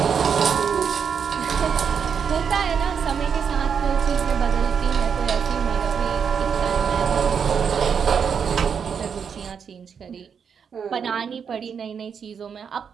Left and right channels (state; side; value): quieter; left; 6.9 dB